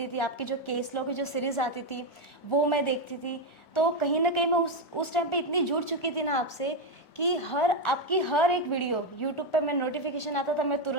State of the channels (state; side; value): late; right; 3.0 ms